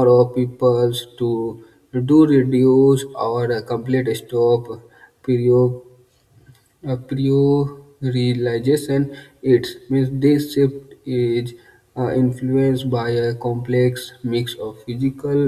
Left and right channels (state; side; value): identical; both; correlation 1.00